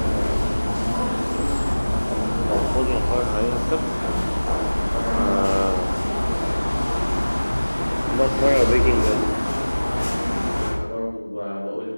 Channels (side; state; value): both; inverted; correlation -1.00